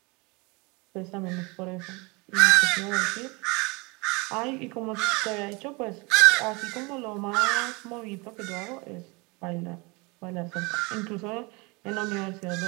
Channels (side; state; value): left; quieter; 27.4 dB